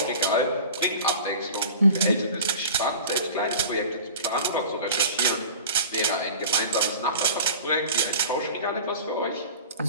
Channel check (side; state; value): both; inverted; correlation -0.39